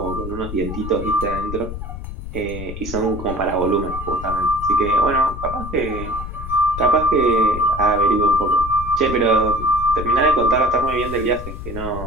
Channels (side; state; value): left; noise; rumble, 9 dB below the sound